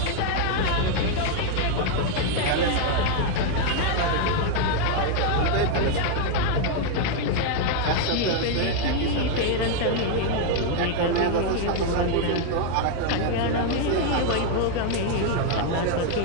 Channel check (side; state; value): both; different; correlation 0.01